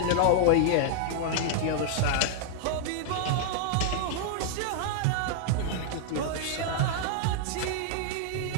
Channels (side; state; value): both; different; correlation 0.00